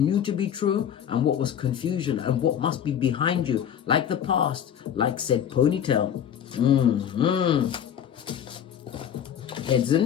to be true and what was confusion and what must be behind you. Like the past, like said ponytail. Heads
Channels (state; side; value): quieter; right; 9.1 dB